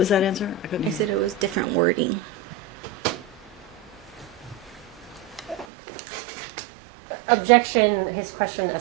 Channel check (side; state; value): left; drops out; at 5.7 s